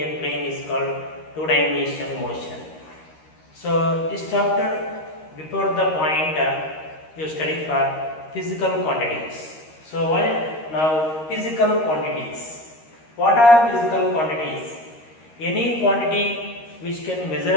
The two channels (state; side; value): late; right; 13 ms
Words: plane is called two-dimensional motion. So this chapter before the point you study for physical quantities. So now physical quantities. What are physical quantities? Any quantity which can